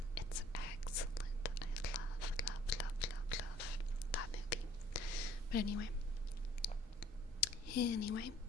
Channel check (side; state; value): both; normal; correlation 0.57